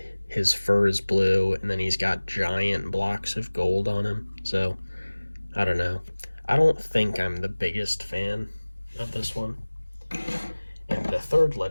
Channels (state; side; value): inverted; both; correlation -1.00